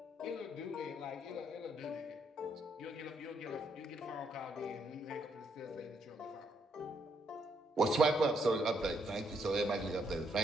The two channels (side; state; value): both; normal; correlation 0.74